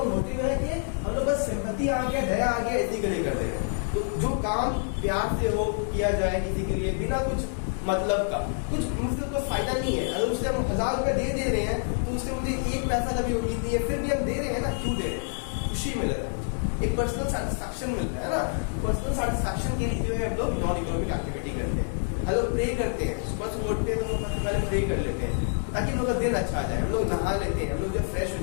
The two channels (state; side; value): silent; right; 60 dB below the other